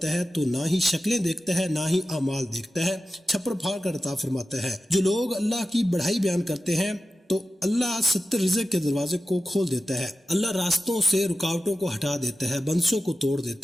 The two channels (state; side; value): normal; both; correlation 0.93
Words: ہے تو نہ ہی شکلیں دیکھتا ہے نہ ہی اعمال دیکھتا ہے، چھپڑ پھاڑ کر عطا فرماتا ہے۔ جو لوگ اللہ کی بڑائی بیان کرتے ہیں تو اللہ 70 رزق کے دروازے کو کھول دیتا ہے، اللہ راستوں سے رکاوٹوں کو ہٹا دیتا ہے، بندشوں کو توڑ